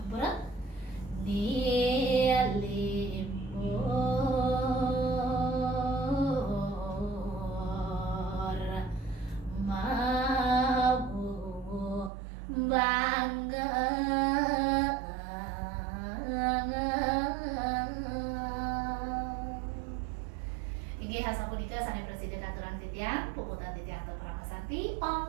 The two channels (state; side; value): drops out; left; at 12.1 s